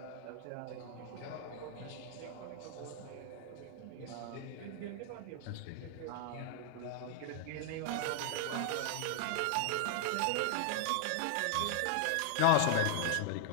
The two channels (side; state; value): both; different; correlation 0.00